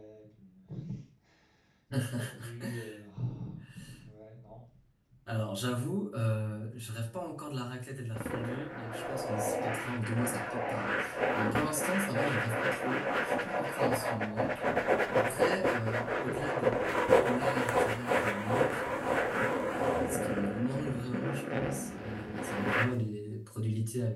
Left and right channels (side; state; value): both; identical; correlation 1.00